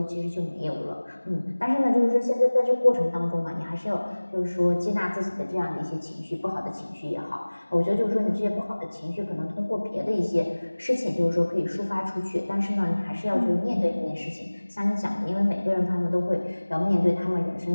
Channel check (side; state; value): both; inverted; correlation -1.00